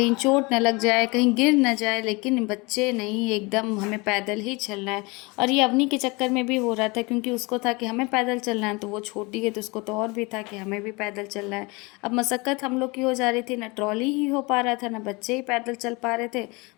चोट न लग जाए, कहीं गिर न जाए। लेकिन बच्चे नहीं, एकदम हमें पैदल ही चलना है। और ये अवनी के चक्कर में भी हो रहा था, क्योंकि उसको था कि हमें पैदल चलना है, तो वो छोटी है तो उसको तो और भी था कि हमें भी पैदल चलना है। अब मशक्क़त हम लोग की हो जा रही थी, ना ट्रॉली ही हो पा रहा था, ना बच्चे ही पैदल चल पा रहे थे,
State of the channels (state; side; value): quieter; right; 26.3 dB